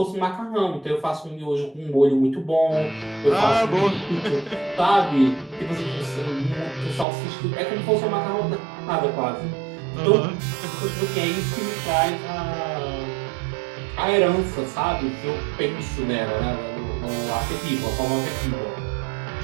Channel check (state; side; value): drops out; left; at 7.1 s